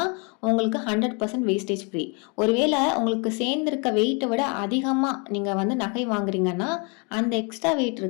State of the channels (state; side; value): quieter; right; 33.8 dB